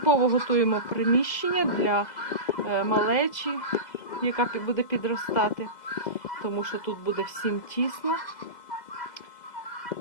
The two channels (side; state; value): right; late; 2.0 ms